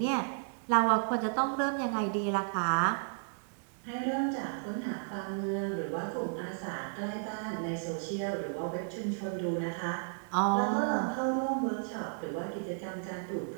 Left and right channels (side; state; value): left; silent; digital silence